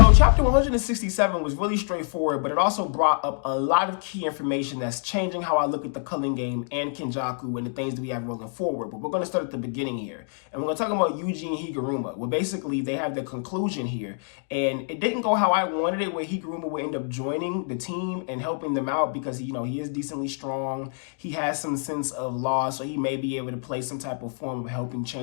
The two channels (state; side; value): silent; right; 56 dB below the other